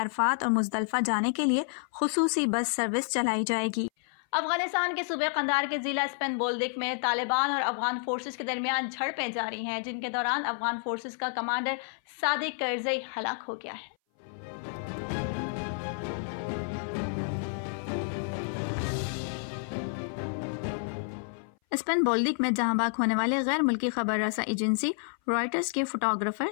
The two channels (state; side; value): silent; right; 57 dB below the other